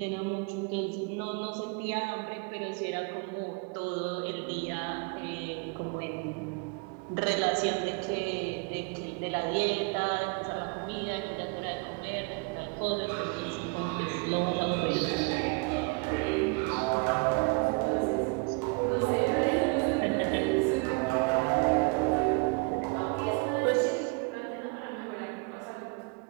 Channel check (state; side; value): quieter; left; 31.9 dB